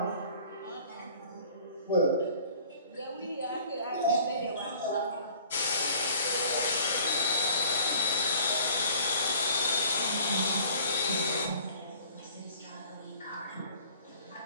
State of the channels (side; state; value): both; inverted; correlation -0.50